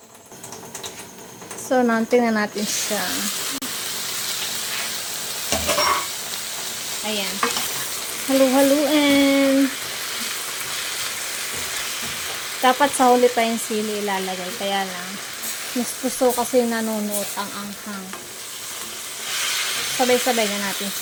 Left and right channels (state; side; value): identical; both; correlation 1.00